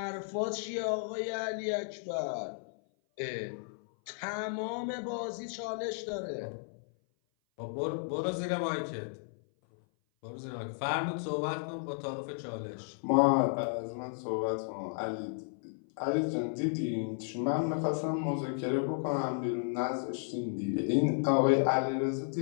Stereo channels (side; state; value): right; silent; 55 dB below the other